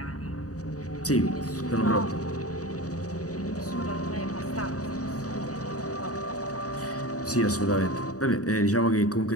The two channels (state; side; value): late; right; 0.67 ms